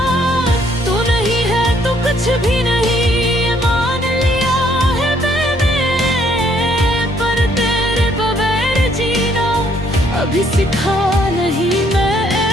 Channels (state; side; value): normal; both; correlation 0.67